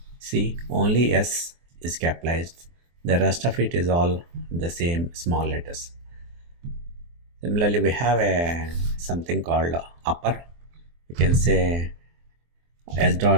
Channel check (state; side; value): late; left; 24 ms